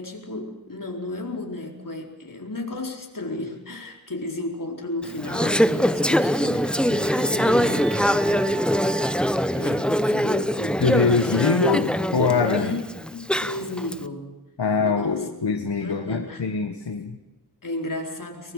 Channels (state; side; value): normal; both; correlation 0.50